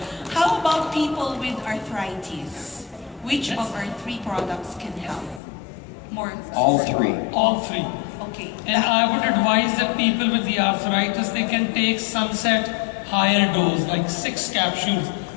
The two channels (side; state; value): right; drops out; at 5.4 s